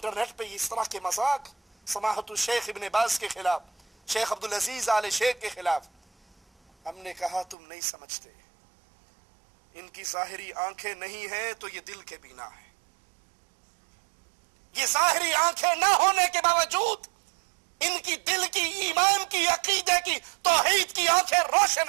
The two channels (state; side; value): drops out; left; at 7.6 s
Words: پہ اس طرح کے مذاق سماحت الشیخ ابن باز کے خلاف, شیخ عبدالعزیز آل شیخ کے خلاف. ہم نے کہا تم نہیں سمجھتے, ان کی ظاہری آنکھیں نہیں ہیں تو یہ دل کے بینا ہے. یہ ظاہری آنکھیں نہ ہونے کے باوجود ان کی دل کی, ایمان کی, عقیدے کی, توحید کی آنکھیں